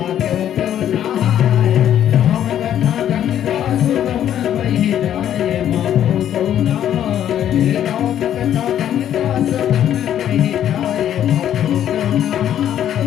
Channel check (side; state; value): right; quieter; 10.6 dB